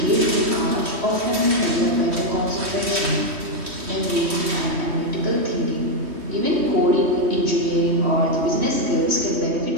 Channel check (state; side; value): late; left; 3.1 ms